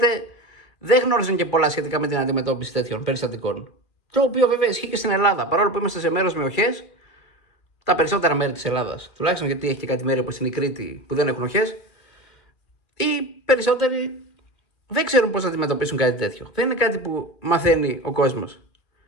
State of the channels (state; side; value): late; right; 2.4 ms